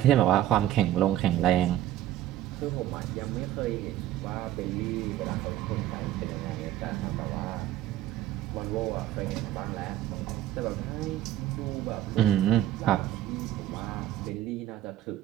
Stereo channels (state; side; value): quieter; left; 13.1 dB